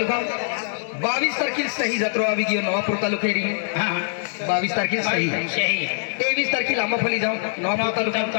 22 तारखेला सही जत्रा आवी गियो नवापूर तालुकेरी 22 तारखेला सही 23 तारखेला आंबाफली जाऊ नवापूर तालुका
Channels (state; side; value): silent; right; digital silence